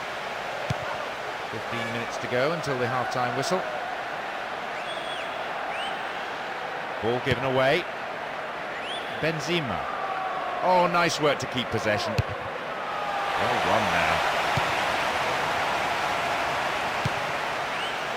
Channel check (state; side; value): identical; both; correlation 1.00